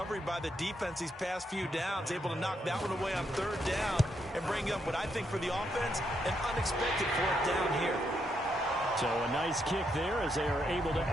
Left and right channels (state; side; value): normal; both; correlation 0.78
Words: by the defense these past few downs, able to knock that one away on 3rd down and bring up what I think for the offense, an unexpected 4th down here. So a nice kick there as they are able to